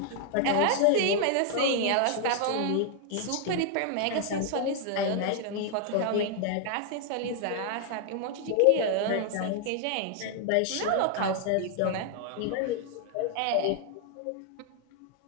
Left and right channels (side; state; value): both; different; correlation 0.00